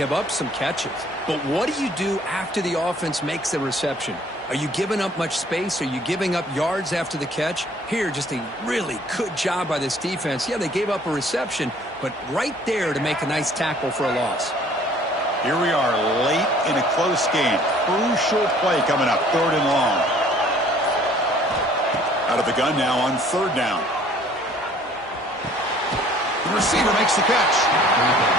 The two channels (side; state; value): both; normal; correlation 0.56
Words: up some catches. But what do you do after the offense makes the reception? Are you giving up much space? Are you giving up yards after the catch? Here, just a really good job by this defense. Yeah, they gave up a reception, but right there to make a nice tackle for a loss. Here we are late in a close game. Crucial play coming up, 3rd and long. Out of the gun now on 3rd down. The receiver makes the catch.